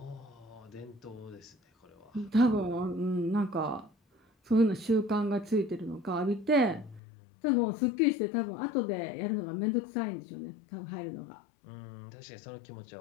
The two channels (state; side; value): drops out; right; at 7.0 s